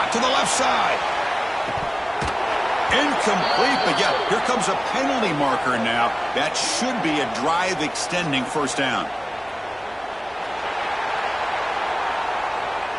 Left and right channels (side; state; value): both; identical; correlation 1.00